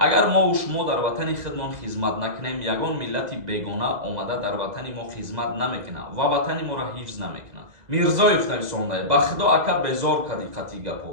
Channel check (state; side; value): late; left; 2.0 ms